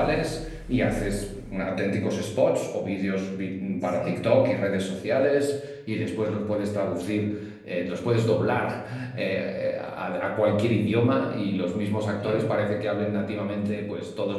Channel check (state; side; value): identical; both; correlation 1.00